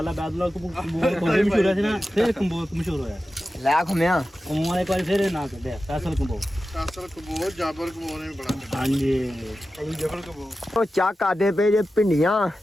ਬਾਦਲਾ ਕੰਬੋ ਮਸ਼ਹੂਰ ਆ ਸੀ ਨਾ ਫਿਰ ਕੰਬੋ ਮਸ਼ਹੂਰ ਹੋਇਆ ਲੈ ਖੁੰਮਿਆ ਕੰਬੋ ਵਾਲੇ ਇੱਕ ਵਾਰੀ ਫਿਰ ਨਾਂ ਕੱਢਿਆ ਫੈਸਲ ਕੰਬੋ ਜਾਬਰ ਕਬੋ ਨੇ ਬੜਾ ਹਾਂਜੀ ਜਬਰ ਕਬੋ ਉਹ ਚਾਹ ਕਰਦੇ ਪਏ ਜੇ ਭਿੰਡੀਆਂ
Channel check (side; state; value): both; normal; correlation 0.93